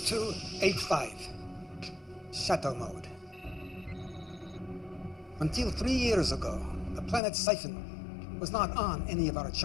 Shadow mode. Until 3 years ago, the planet Siphon was not on any of our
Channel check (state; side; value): drops out; right; at 7.2 s